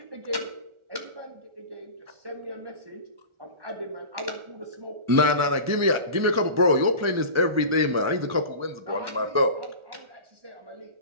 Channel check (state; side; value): late; left; 1.4 ms